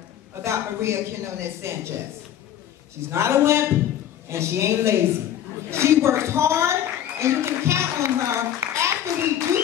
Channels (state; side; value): quieter; right; 10.6 dB